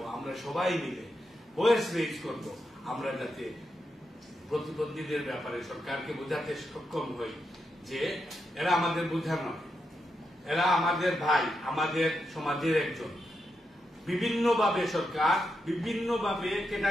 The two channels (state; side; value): normal; both; correlation 0.84